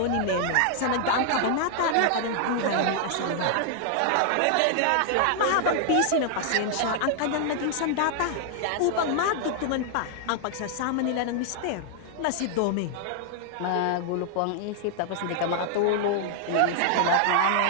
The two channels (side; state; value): both; different; correlation 0.00